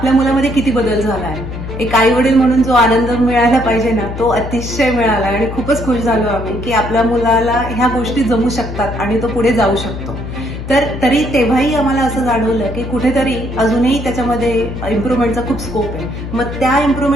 मुलामध्ये किती बदल झाला आहे. एक आई वडील म्हणून जो आनंद मिळायला पाहिजे ना तो अतिशय मिळाला आणि खूपच खुश झालो आम्ही की आपल्या मुलाला ह्या गोष्टी जमू शकतात आणि तो पुढे जाऊ शकतो. तरी तेव्हाही आम्हाला असं जाणवलं की कुठेतरी अजूनही त्याच्यामध्ये इम्प्रुव्हमेंटचा खूप स्कोप आहे. मग त्या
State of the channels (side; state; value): left; noise; hum, 8 dB below the sound